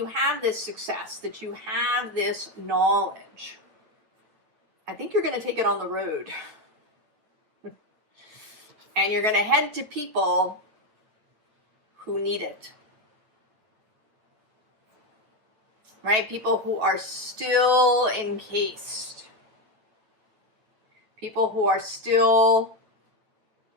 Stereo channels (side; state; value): left; late; 9.3 ms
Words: have this success, that you have this knowledge, I think you're going to take it on the road. And you're going to head to people who need it. Right? People who are still encased. People who are still,